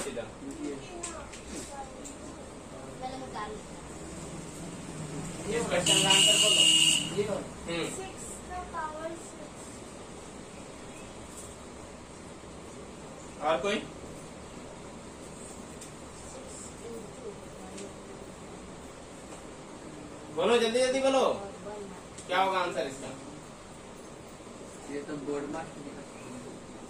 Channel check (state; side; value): identical; both; correlation 1.00